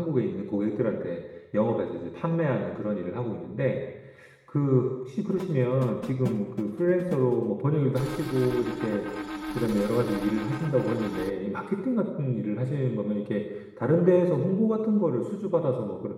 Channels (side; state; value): both; identical; correlation 1.00